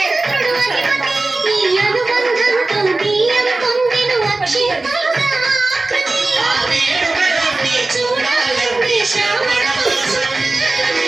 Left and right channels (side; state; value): left; quieter; 3.2 dB